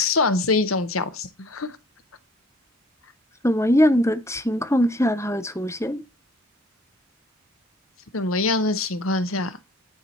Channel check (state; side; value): normal; both; correlation 0.54